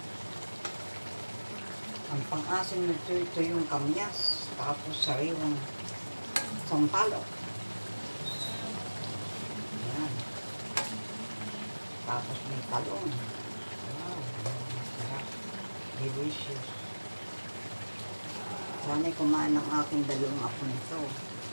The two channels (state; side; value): inverted; both; correlation -1.00